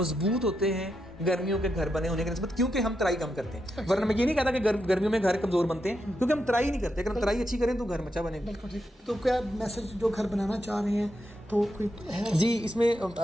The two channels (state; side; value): normal; both; correlation 0.84